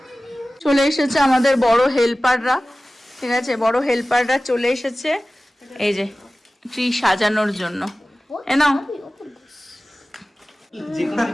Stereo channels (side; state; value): both; normal; correlation 0.97